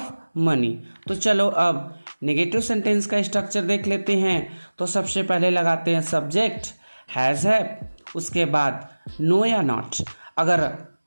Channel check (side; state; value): both; inverted; correlation -1.00